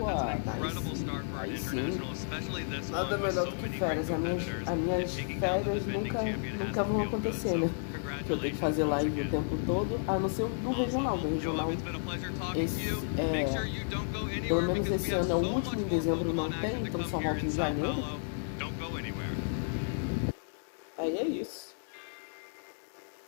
nice. Aí sim. Nada melhor do que férias. As minhas férias nunca vão acontecer, né? Que eu tenho que fazer live o tempo todo, a não ser do regional. Do regional, pelo menos esse ano é o último, em dezembro não tem, então só volta em janeiro. Aí é isso.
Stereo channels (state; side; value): silent; right; digital silence